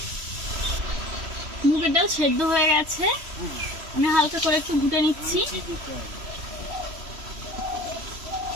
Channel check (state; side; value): late; left; 3.0 ms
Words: মুগের ডাল সেদ্ধ হয়ে গেছে, আমি হালকা করে একটু ঘুটে নিচ্ছি।